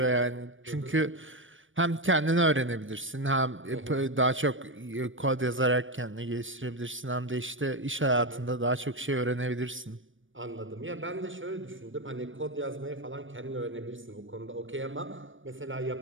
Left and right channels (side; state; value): left; late; 0.57 ms